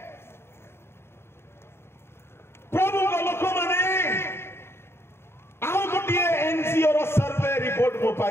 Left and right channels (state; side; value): late; right; 0.12 ms